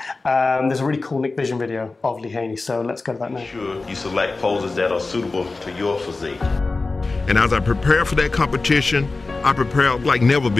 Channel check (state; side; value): quieter; right; 3.6 dB